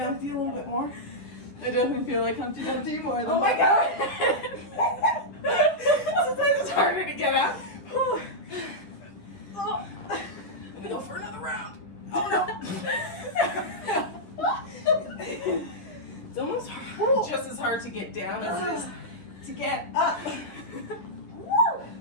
a little bit more. I definitely feel like Humpty Dumpty more than Oh my god! Sometimes it's harder to get up. I'm gonna go for another round. Oh no! It's almost just as hard to get down as it is to get up. Woo!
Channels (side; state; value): right; late; 10 ms